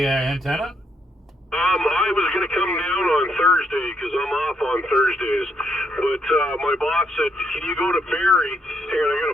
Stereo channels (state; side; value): normal; both; correlation 0.74